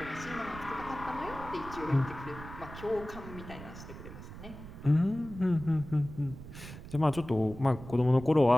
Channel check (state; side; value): noise; right; rumble, 13 dB below the sound